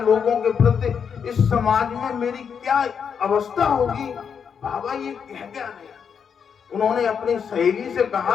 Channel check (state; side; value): quieter; right; 6.9 dB